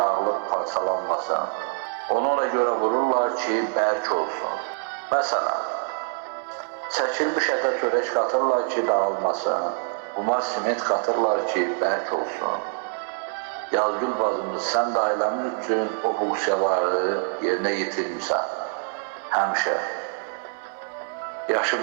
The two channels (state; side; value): silent; left; 61 dB below the other